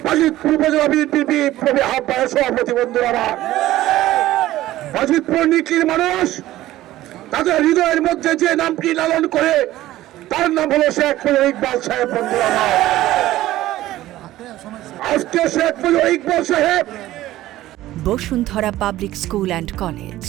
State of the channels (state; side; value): quieter; left; 15.3 dB